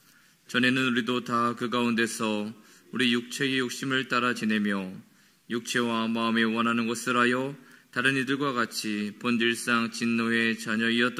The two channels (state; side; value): identical; both; correlation 1.00